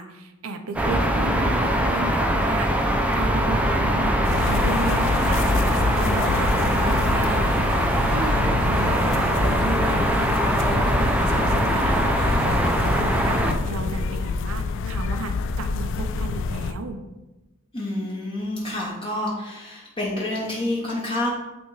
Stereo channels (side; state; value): both; normal; correlation 0.64